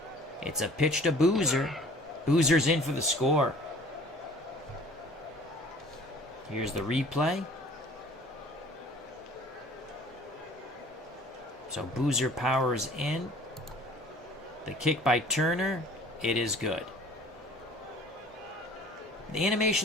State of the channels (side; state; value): both; normal; correlation 0.50